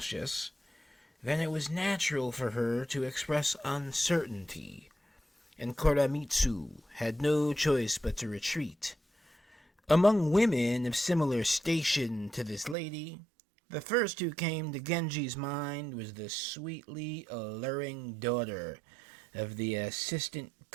then it was natural for her to express uncertainty, and Koremitsu had no choice but to retreat. Among women of similar station to this lady, the first who came to Genji's mind was the sweetly alluring daughter of the Assistant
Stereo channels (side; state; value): left; drops out; at 12.8 s